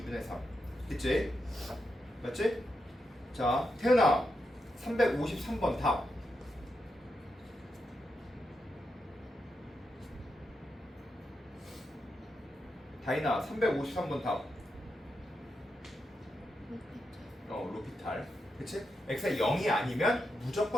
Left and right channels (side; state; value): both; normal; correlation 0.86